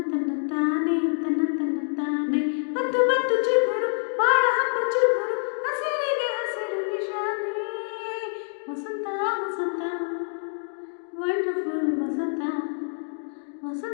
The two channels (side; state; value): right; silent; digital silence